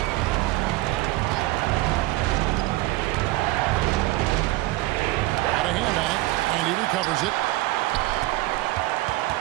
Got a hand on it, and he recovers it.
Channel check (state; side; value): quieter; left; 19.1 dB